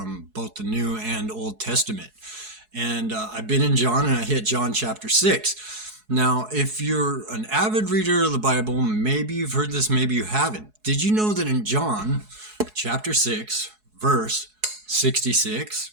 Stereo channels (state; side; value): late; left; 4.7 ms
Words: both the New and Old Testament. And I've been in John and I hit John chapter 6. Now, if you're an avid reader of the Bible, maybe you've heard this, maybe you haven't. Did you know that in John chapter 6, verse 66,